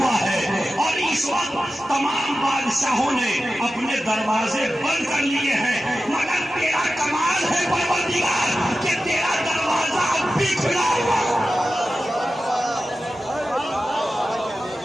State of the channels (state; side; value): normal; both; correlation 0.93